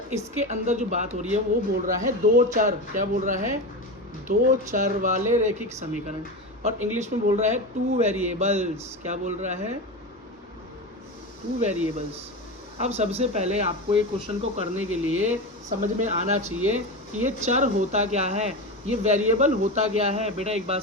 इसके अंदर जो बात हो रही है वो बोल रहा है दो चर, क्या बोल रहा है, दो चर वाले रैखिक समीकरण, और इंग्लिश में बोल रहा है टू वेरिएबल्स। क्या बोल रहा है, टू वेरिएबल्स। अब सबसे पहले आपको ये क्वेश्चन को करने के लिए समझ में आना चाहिए कि ये चर होता क्या है, ये वेरिएबल होता क्या है। बेटा एक बात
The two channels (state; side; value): normal; both; correlation 0.21